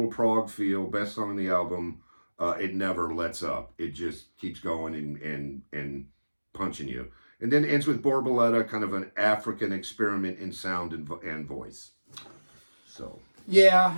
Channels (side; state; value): both; inverted; correlation -1.00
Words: prog feel. Best song on the album. It never lets up. It just keeps going and punching you. And then ends with Borboletta, kind of an African experiment in sound and voice. So.